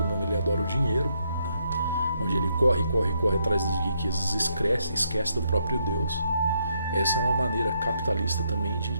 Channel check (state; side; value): inverted; both; correlation -0.76